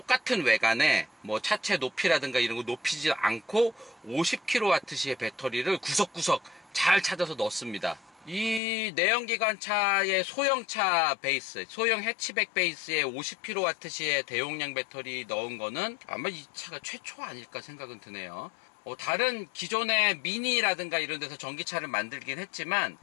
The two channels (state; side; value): drops out; right; at 8.6 s